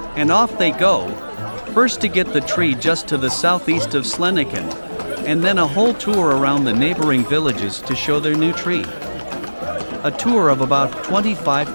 and off they go, first to get the tree just to the southeast of Sleniken, and then a whole tour around the neighboring villages to show their new tree. a tour of about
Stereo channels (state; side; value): inverted; both; correlation -1.00